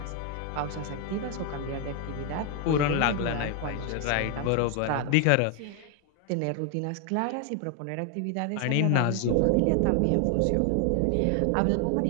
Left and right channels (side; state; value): both; different; correlation 0.00